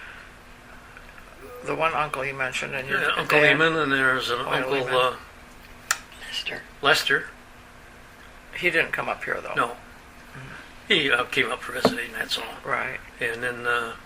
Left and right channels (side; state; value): both; identical; correlation 1.00